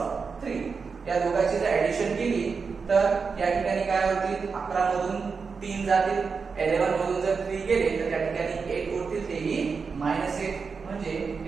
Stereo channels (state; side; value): quieter; left; 5.2 dB